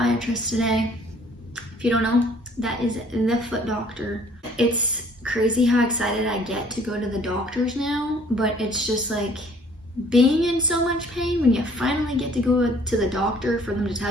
today. If you don't know, that is the foot doctor. It's crazy how excited I get to go to the doctors now, but it's just like being in so much pain when you finally get to go to the doctor for them to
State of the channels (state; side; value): normal; both; correlation 0.57